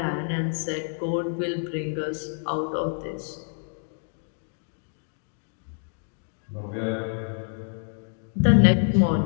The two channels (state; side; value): silent; right; digital silence